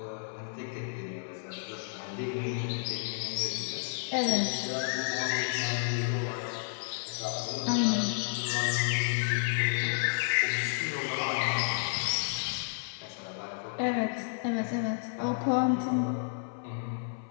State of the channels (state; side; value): silent; right; 57 dB below the other